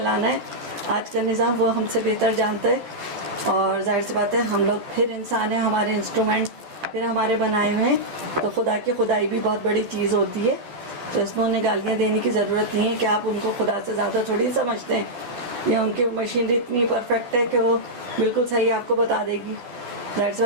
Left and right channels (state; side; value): late; left; 12 ms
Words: है। आज का निज़ाम वो हमसे बेहतर जानता है। और जाहिर सी बात है हम लोग फिर इंसान हैं, हमारे इंस्ट्रूमेंट फिर हमारे बनाए हुए हैं, तो खुदा की खुदाई भी बहुत बड़ी चीज़ होती है। तो इसमें उन्हें गालियाँ देने की ज़रूरत नहीं है कि आप उनको खुदा से ज़्यादा थोड़ी समझते हैं, या उनकी मशीनरी इतनी परफेक्ट है कि वो बिल्कुल सही आपको बता देगी। जाहिर सी